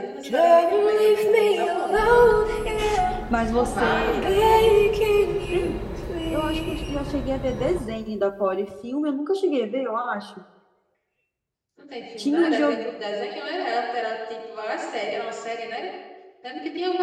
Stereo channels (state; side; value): identical; both; correlation 1.00